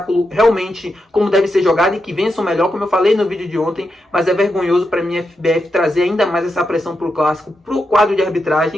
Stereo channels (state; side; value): normal; both; correlation 0.86